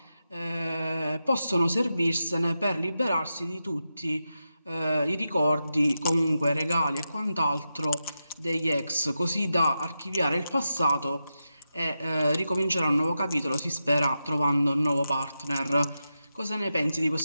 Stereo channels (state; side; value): inverted; both; correlation -0.89